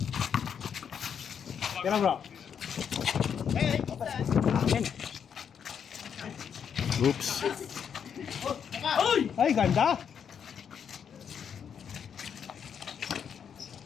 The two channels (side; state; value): right; quieter; 7.6 dB